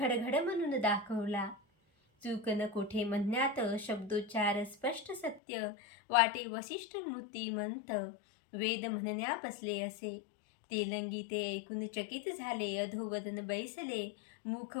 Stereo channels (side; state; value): right; drops out; at 5.4 s